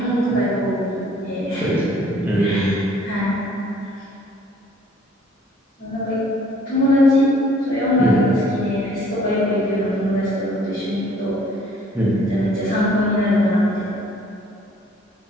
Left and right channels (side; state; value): both; normal; correlation 0.58